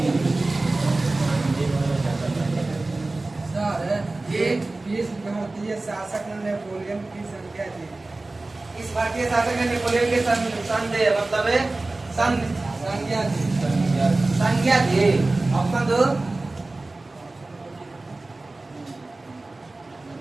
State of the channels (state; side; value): quieter; left; 3.1 dB